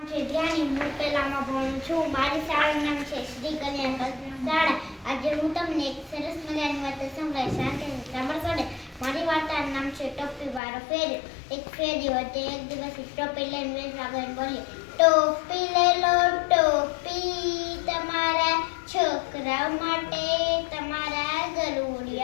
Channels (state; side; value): drops out; right; at 10.6 s